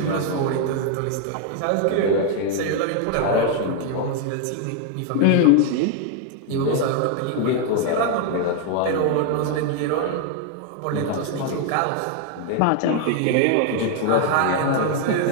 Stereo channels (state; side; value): different; both; correlation 0.00